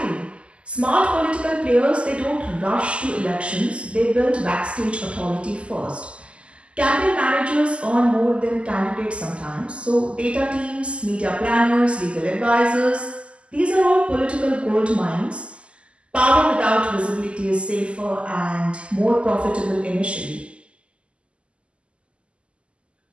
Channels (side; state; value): left; late; 0.055 ms